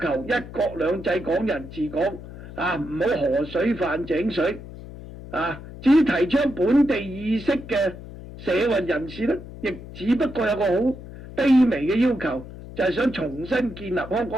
一國兩制、港人治港，唔好河水泛井水。至於提倡本地意識嘅社運人士呢，亦只不過有個好卑微嘅要求，就係想重新建立香港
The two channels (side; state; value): left; noise; hum, 14 dB below the sound